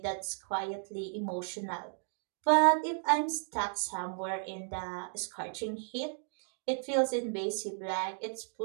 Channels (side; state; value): left; silent; digital silence